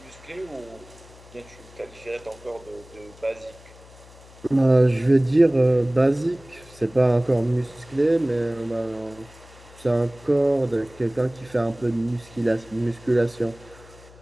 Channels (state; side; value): noise; left; hum, 22 dB below the sound